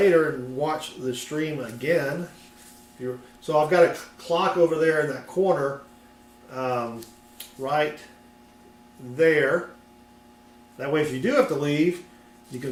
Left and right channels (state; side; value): identical; both; correlation 1.00